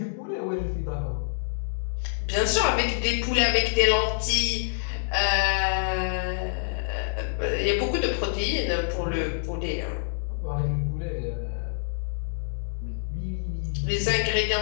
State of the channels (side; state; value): right; silent; digital silence